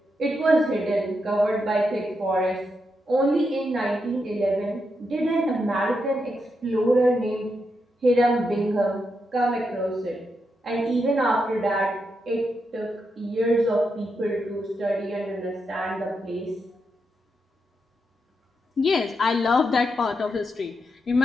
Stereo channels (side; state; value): both; normal; correlation 0.84